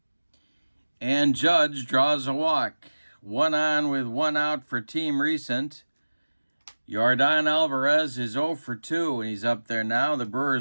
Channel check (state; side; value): inverted; both; correlation -1.00